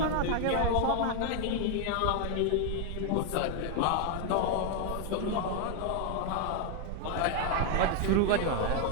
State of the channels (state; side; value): different; both; correlation 0.01